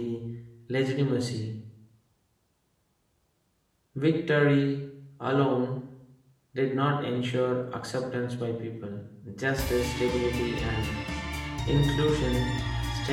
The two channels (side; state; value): both; identical; correlation 1.00